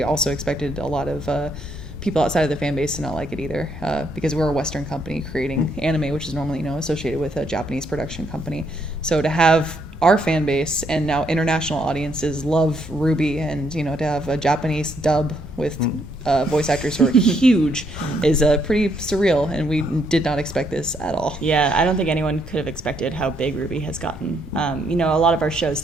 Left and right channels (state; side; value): normal; both; correlation 0.73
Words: also expected a lot of people outside of the fan base to not like it either, because we're a Western company creating anime, which is normally associated with a Japanese production company. So to have our fan base and now international audiences love Rwby, and to have a Japanese dub with voice actors who are huge is pretty surreal, and we did not expect this at all. Yeah, I don't think anyone could have expected how big Rwby has gotten. A lot of our shows